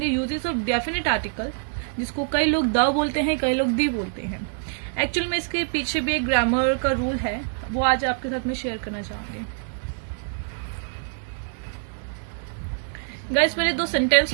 यूजेस ऑफ डेफिनेट आर्टिकल, जिसको कई लोग द बोलते हैं, कई लोग दी बोलते हैं। एक्चुअल में इसके पीछे भी एक ग्रामर का रूल है, वो आज आपके साथ में शेयर करना चाहूंगी। गाइस, मैंने दो सेंटेंस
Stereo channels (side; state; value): left; silent; digital silence